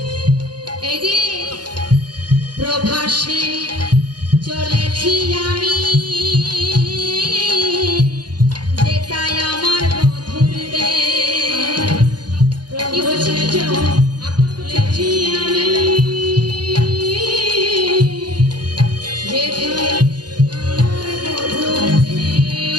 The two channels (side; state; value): left; late; 0.70 ms